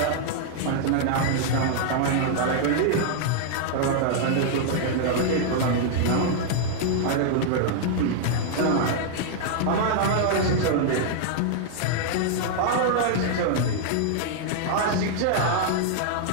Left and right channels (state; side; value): different; both; correlation -0.01